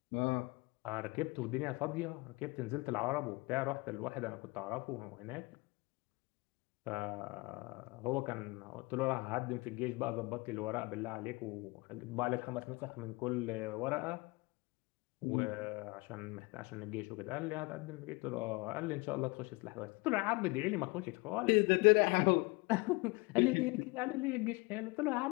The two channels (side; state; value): right; quieter; 26.0 dB